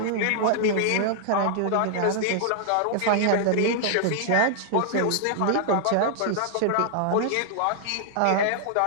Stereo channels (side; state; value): both; different; correlation -0.01